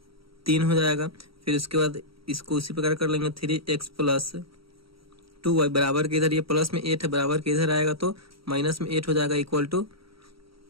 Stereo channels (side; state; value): left; late; 0.75 ms